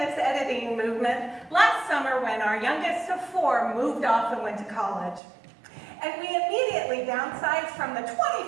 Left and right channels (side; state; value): left; drops out; at 5.2 s